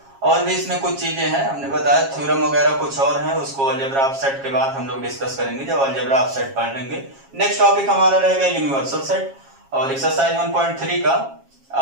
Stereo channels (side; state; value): left; late; 7.4 ms